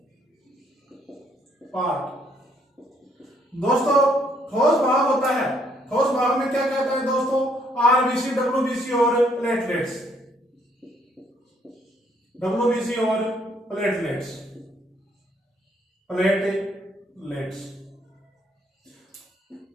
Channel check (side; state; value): both; normal; correlation 0.68